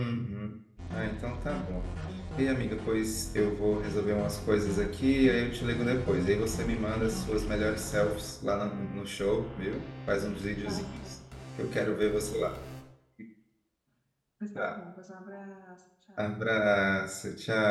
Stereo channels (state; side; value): identical; both; correlation 1.00